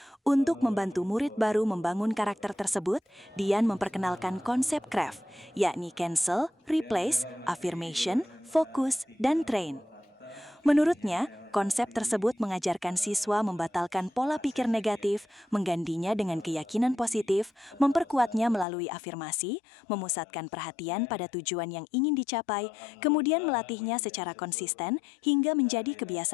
Untuk membantu murid baru membangun karakter tersebut, Dian memperkenalkan konsep CRAFT, yakni cancel, replace, affirmation, fokus, dan train. Menurutnya, konsep tersebut mengajarkan siswa membatalkan pola pikir negatif, menggantinya dengan keyakinan positif, memperkuatnya melalui afirmasi, memusatkan perhatian pada tujuan yang ingin dicapai, kemudian melatihnya secara konsisten hingga menjadi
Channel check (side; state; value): right; drops out; at 18.7 s